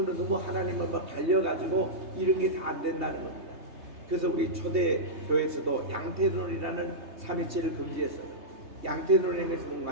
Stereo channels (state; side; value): late; left; 3.3 ms